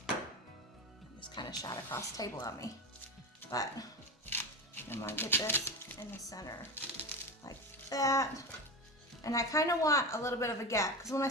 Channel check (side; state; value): both; normal; correlation 0.22